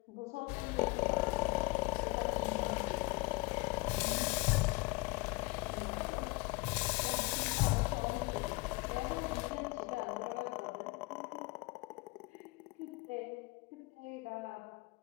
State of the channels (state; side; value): quieter; right; 25.2 dB